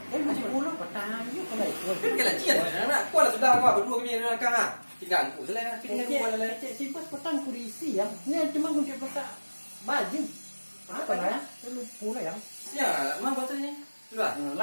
Macam pulau petang you kalau ikut. Pakai laci dah nak. Kau lah sudah kau berdua kami dalam kang ah. Tinggal aku selai. Tinggal aku lah. Simpas petang kursi yang. Ni cuma kunci petak baju. Apa lah ya? Lu pula yang. Ya, mang betul ni. Sudah.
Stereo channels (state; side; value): inverted; both; correlation -1.00